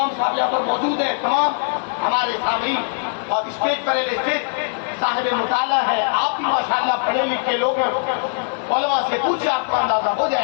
صاحب یہاں پر موجود ہے. تمام ہمارے سامعین اور اسٹیج پر اسٹیج صاحب مطالعہ ہے. آپ بھی ماشاءاللہ پڑھے لکھے لوگ ہیں, علماء سے پوچھے آپ کو اندازہ ہو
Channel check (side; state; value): right; silent; digital silence